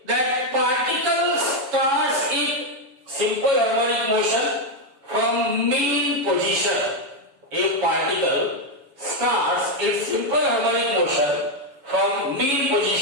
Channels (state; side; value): late; left; 7.1 ms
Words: that particle starts its simple harmonic motion from mean position, a particle starts its simple harmonic motion from mean